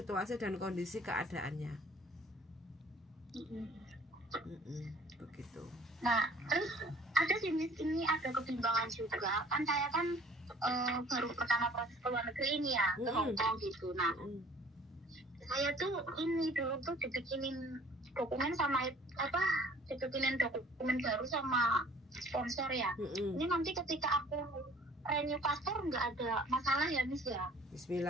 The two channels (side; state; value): both; normal; correlation 0.53